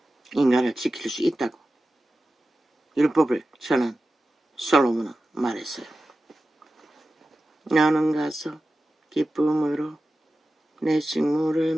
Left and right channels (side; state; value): both; normal; correlation 0.94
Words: 인간을 지킬 수 있다고 율법을 전한 솔로몬은 말했어요. 너는 가서 기쁨으로 내 식물을